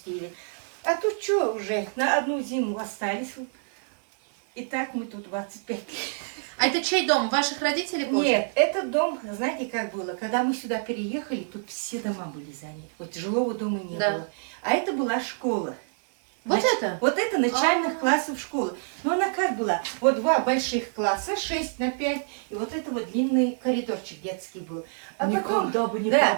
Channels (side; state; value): left; silent; 60 dB below the other